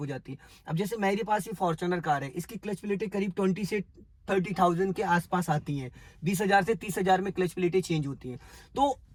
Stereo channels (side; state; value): both; identical; correlation 1.00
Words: जाती है। अब जैसे मेरे पास ये फॉर्च्यूनर कार है, इसकी क्लच प्लेटें करीब 20 से 30,000 के आसपास आती हैं। 20,000 से 30,000 में क्लच प्लेटें चेंज होती हैं। तो